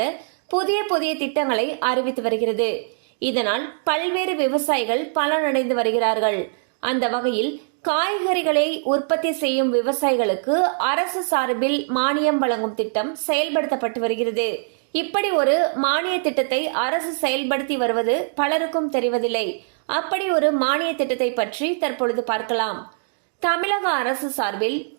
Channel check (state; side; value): silent; left; digital silence